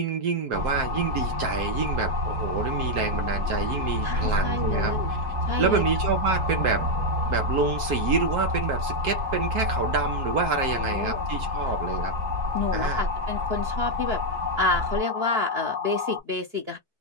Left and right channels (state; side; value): late; left; 4.6 ms